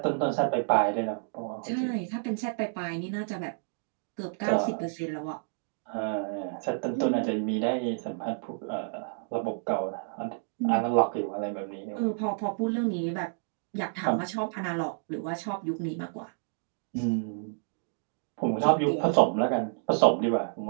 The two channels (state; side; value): silent; left; digital silence